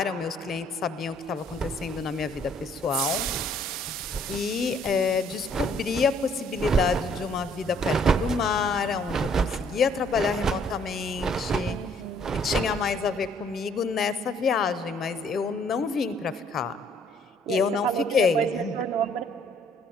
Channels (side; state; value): both; normal; correlation 0.62